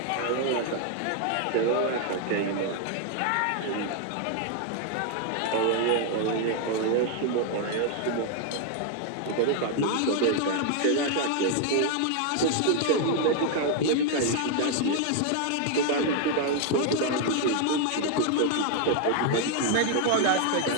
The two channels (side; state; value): both; different; correlation 0.00